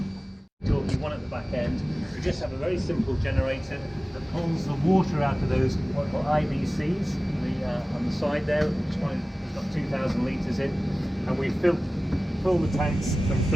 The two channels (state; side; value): normal; both; correlation 0.97